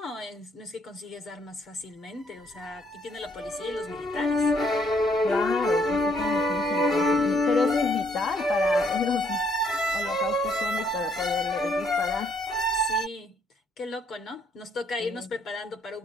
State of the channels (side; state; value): both; normal; correlation 0.68